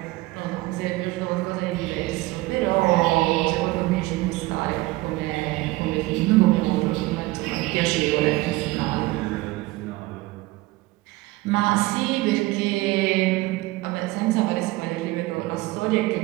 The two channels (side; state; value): left; quieter; 19.9 dB